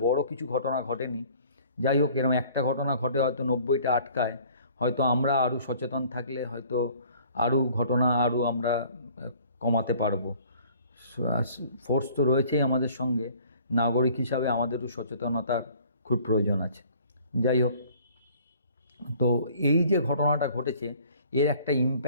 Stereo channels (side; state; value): both; inverted; correlation -0.53